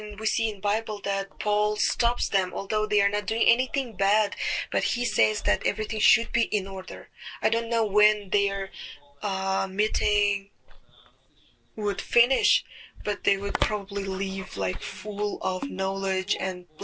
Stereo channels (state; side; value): identical; both; correlation 1.00